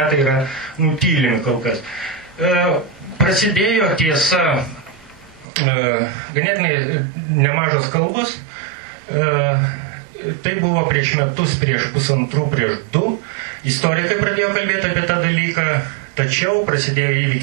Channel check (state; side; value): drops out; left; at 5.5 s